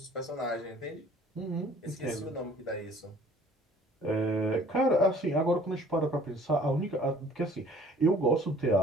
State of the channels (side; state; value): both; normal; correlation 0.53